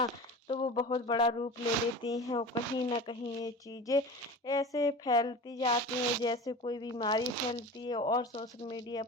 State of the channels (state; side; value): normal; both; correlation 0.33